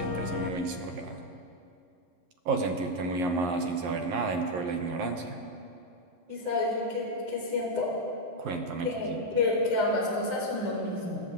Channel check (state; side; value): late; left; 11 ms